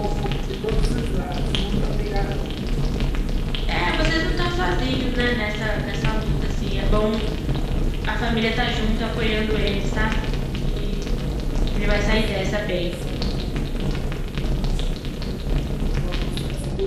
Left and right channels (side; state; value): both; identical; correlation 1.00